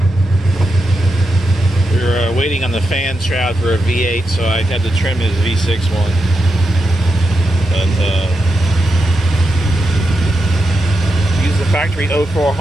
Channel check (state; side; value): normal; both; correlation 0.87